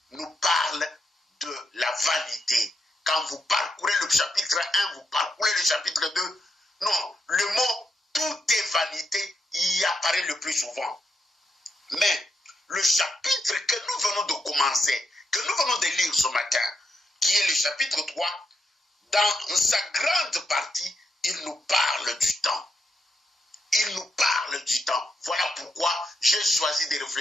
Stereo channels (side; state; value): both; normal; correlation 0.81